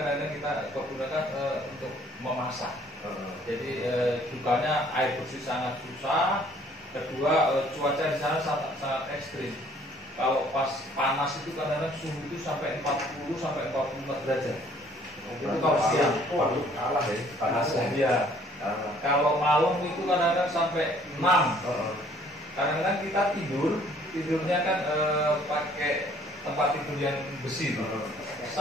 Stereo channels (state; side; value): normal; both; correlation 0.59